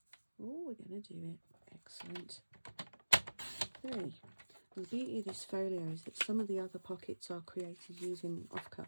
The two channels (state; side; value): inverted; both; correlation -1.00